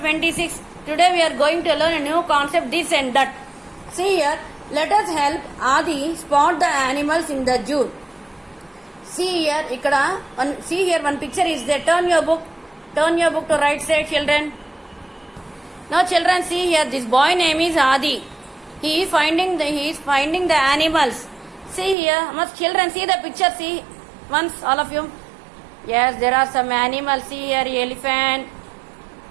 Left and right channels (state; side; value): drops out; left; at 22.0 s